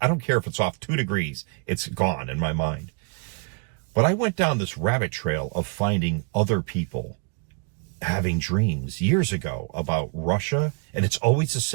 I don't care if it's off 2 degrees. It's gone in my mind. But I went down this rabbit trail of finding other people having dreams years ago about Russia, and it's always the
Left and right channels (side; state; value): left; quieter; 36.4 dB